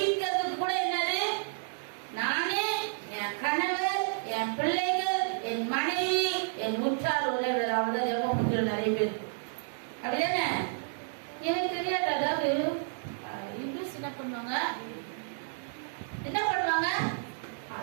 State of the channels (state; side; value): silent; left; digital silence